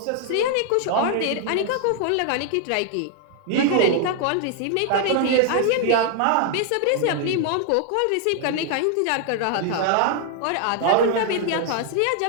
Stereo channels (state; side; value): different; both; correlation 0.00